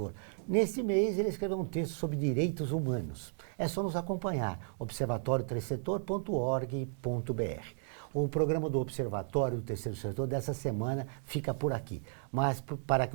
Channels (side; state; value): left; silent; digital silence